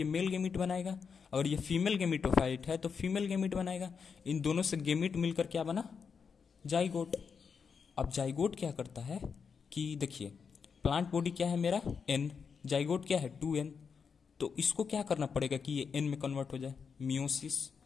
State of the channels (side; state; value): right; quieter; 6.0 dB